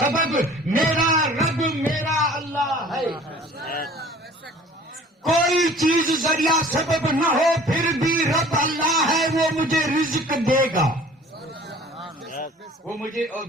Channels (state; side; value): normal; both; correlation 0.49